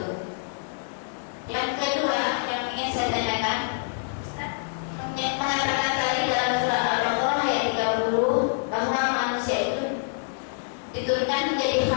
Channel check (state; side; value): silent; right; 61 dB below the other